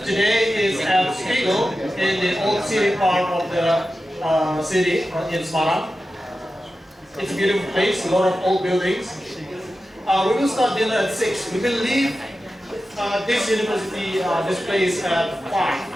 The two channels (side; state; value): both; normal; correlation 0.92